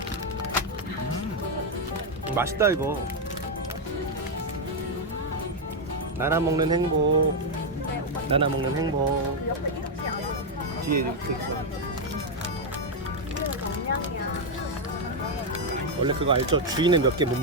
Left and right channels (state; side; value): normal; both; correlation 0.02